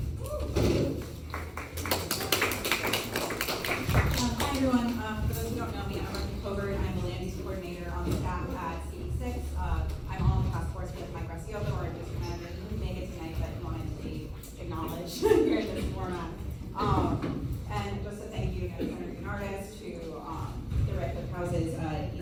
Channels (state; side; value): identical; both; correlation 1.00